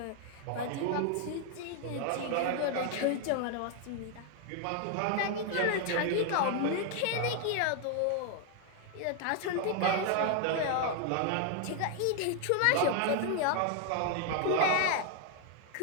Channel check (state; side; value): different; both; correlation 0.00